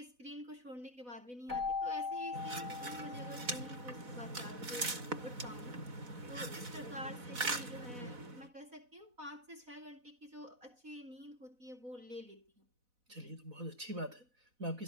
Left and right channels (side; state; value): left; late; 4.0 ms